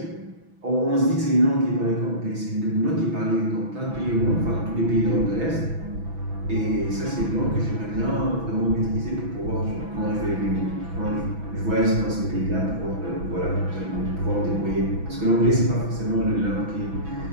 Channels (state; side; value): late; left; 6.1 ms